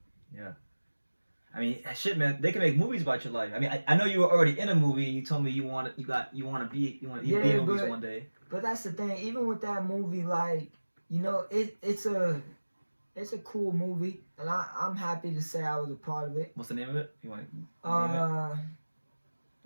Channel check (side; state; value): both; inverted; correlation -1.00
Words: Yeah. I mean, shit, man. They can make movies about your life. I mean, I know you were already in a movie, and you told me you want to be in movies one day. But that's the thing. Even with that movie, like, you know, it's a cool movie, and I'm happy to say I was a part of it. What's the name of it? You want to name it?